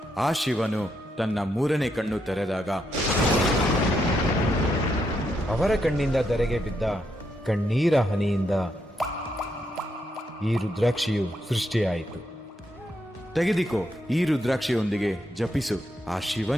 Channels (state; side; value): normal; both; correlation 0.80